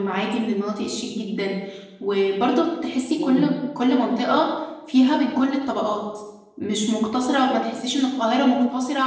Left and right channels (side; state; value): both; identical; correlation 1.00